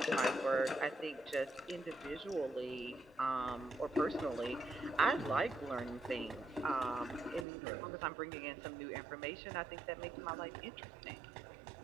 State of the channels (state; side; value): drops out; left; at 7.5 s